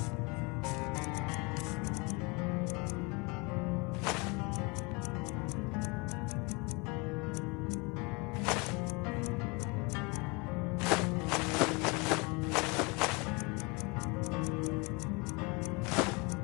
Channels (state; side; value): quieter; right; 28.6 dB